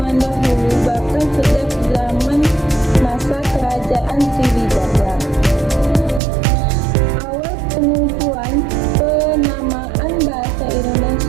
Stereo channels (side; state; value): left; drops out; at 6.2 s